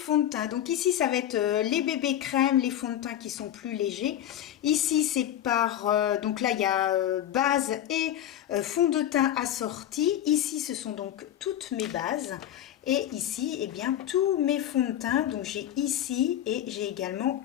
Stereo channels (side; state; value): right; quieter; 11.4 dB